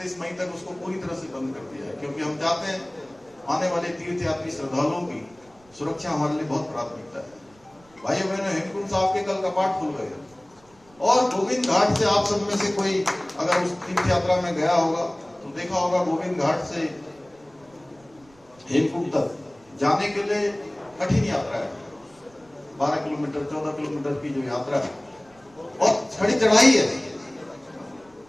मई तक उसको पूरी तरह से बंद कर दिया है, क्योंकि हम चाहते हैं आने वाले तीर्थयात्री श्रद्धालुओं की सुरक्षा हमारे लिए बहुत प्राथमिकता है। भाइयों बहनों, हेमकुंड साहब के कल कपाट खुल गए और गोविंद घाट से आप सब में से कोई अगर उस तीर्थ यात्रा में गया होगा तो देखा होगा, गोविंद घाट से हेमकुंड तक जाने के लिए कठिन यात्रा है। 12 किलोमीटर 14 किलोमीटर की जो यात्रा है और खड़ी चढ़ाई है,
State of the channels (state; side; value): noise; right; rumble, 30 dB below the sound